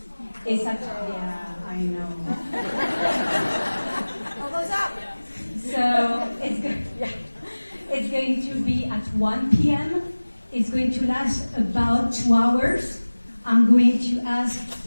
It's at, yeah, I know. Elbows up. So it's going to be at 1 p.m. It's going to last about 2 hours. I'm going to ask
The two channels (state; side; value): inverted; both; correlation -1.00